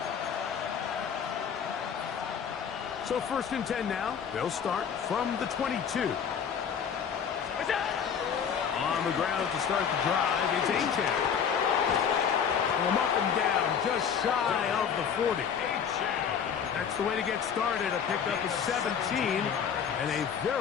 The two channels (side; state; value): right; quieter; 7.4 dB